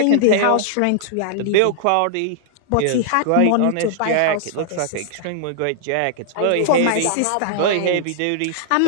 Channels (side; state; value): both; different; correlation -0.01